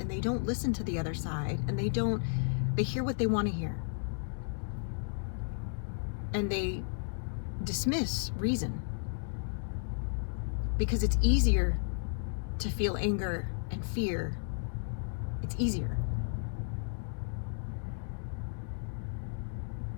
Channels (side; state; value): right; silent; digital silence